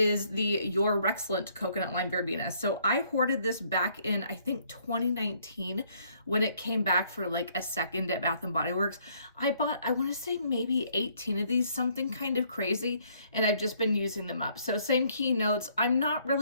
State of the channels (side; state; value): both; inverted; correlation -0.66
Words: the Your Rexcellent coconut lime verbena. So I hoarded this back in, I think 2019 when it came back for like a second at Bath & Body Works. I bought, I want to say maybe 18 of these, something kind of crazy, and I've just been using them up. So same keynotes. I'm not